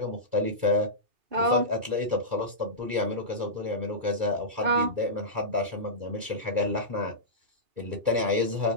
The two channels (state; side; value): late; left; 2.3 ms